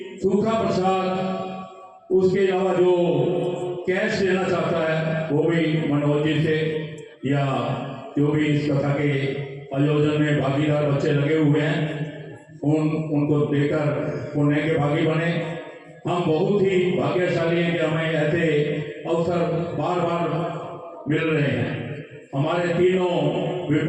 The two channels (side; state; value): both; identical; correlation 1.00